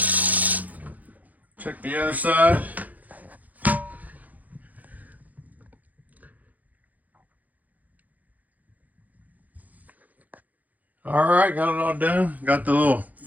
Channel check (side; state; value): left; late; 0.079 ms